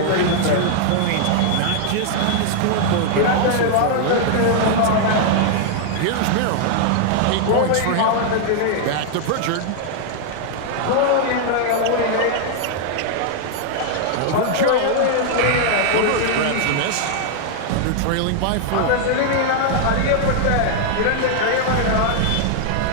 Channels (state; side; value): different; both; correlation 0.00